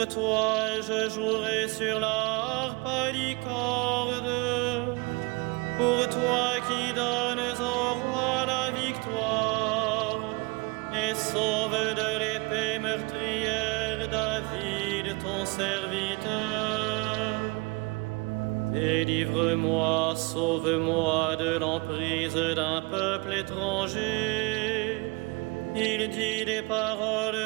toi je jouerai sur la harpe à licorde. Pour toi qui donnes au roi la victoire et sauve de l'épée meurtrière David ton serviteur. Délivre-moi, sauve-moi de l'emprise d'un peuple étranger. Il dit des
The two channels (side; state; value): left; quieter; 27.3 dB